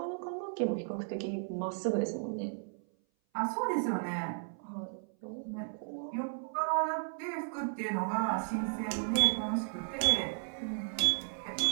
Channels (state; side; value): silent; left; 55 dB below the other